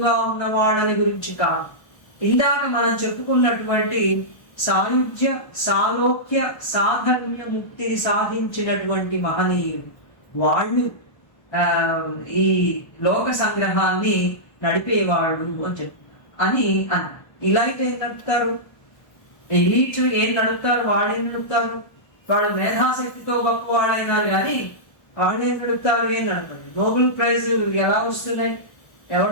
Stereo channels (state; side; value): late; right; 1.3 ms